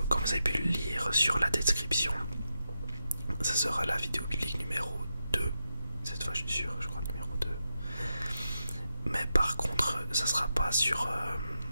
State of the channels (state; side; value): inverted; both; correlation -0.87